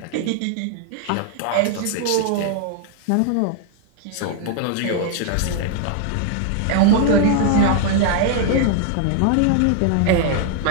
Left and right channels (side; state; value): both; different; correlation 0.00